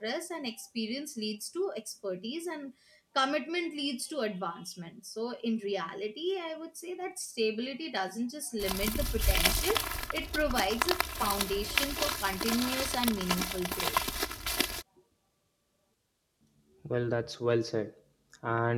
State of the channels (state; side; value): identical; both; correlation 1.00